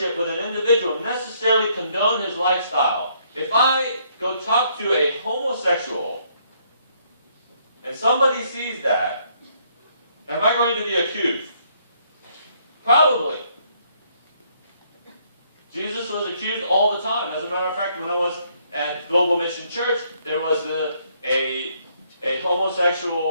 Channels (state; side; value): inverted; both; correlation -0.69